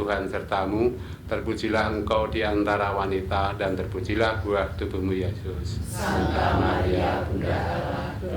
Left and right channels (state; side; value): identical; both; correlation 1.00